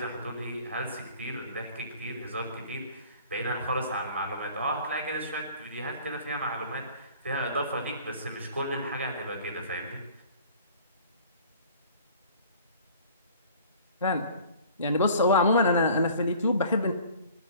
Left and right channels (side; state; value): both; inverted; correlation -0.48